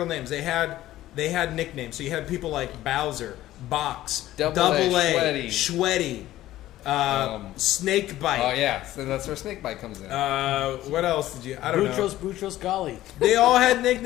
names. They had nicknames. So you had people like Bowser, Box, Double A, A, Schweddy, Snakebite. Oh yeah, so that's where Snakebite comes in. What else did you? I don't know. Boutros Golly. They all had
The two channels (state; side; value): quieter; right; 14.7 dB